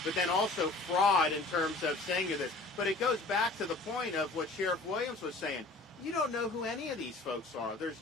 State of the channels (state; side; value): quieter; right; 3.2 dB